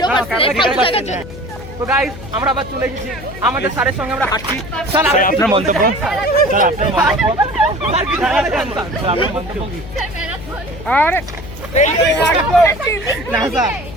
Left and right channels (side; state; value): left; noise; hum, 14 dB below the sound